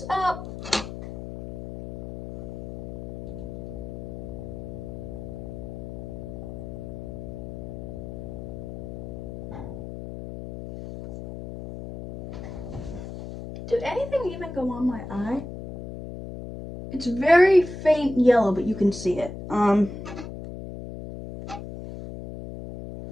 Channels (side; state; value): left; noise; hum, 9 dB below the sound